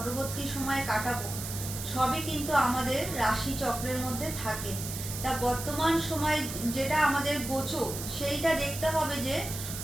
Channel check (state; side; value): noise; right; hiss, 7 dB below the sound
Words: সময় কাটাবো, সবই কিন্তু আমাদের রাশি চক্রের মধ্যে থাকে। তা বর্তমান সময় যেটা আমাদের গোচর, সেইটা দেখতে হবে যে